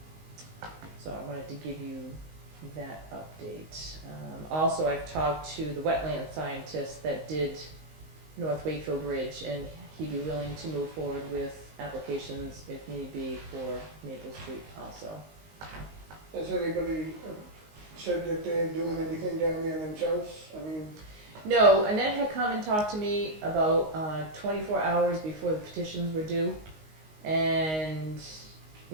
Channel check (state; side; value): late; left; 19 ms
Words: So I wanted to give you that update. Also, I've talked to the wetland scientist that did North Wakefield Bridge, and he'd be willing to move forward with applications if need be for Maple Street also. Has anybody said that they're doing anything down there themselves? I mean, No, Annette had come and talked to me about 24 hours before the petitions were due, and